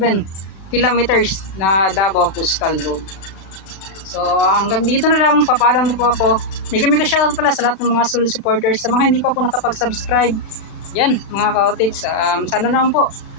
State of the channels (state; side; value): late; right; 36 ms